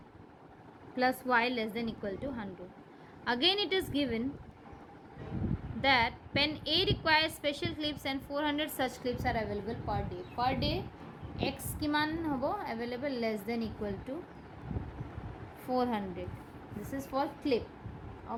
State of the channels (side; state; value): both; identical; correlation 1.00